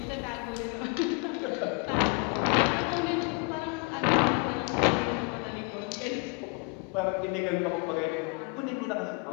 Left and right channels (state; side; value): quieter; right; 32.4 dB